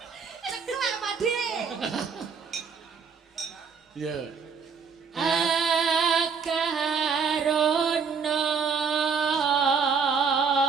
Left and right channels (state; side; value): quieter; left; 5.8 dB